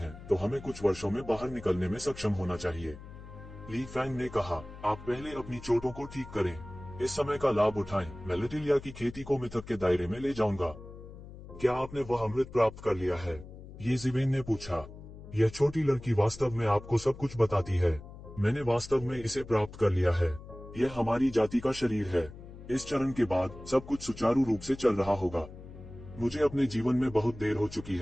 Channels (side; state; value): left; noise; hum, 15 dB below the sound